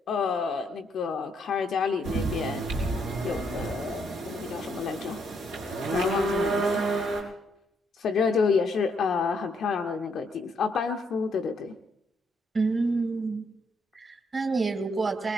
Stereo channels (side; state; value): both; normal; correlation 0.73